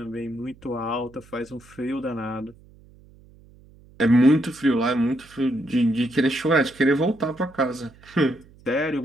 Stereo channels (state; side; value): noise; right; hum, 25 dB below the sound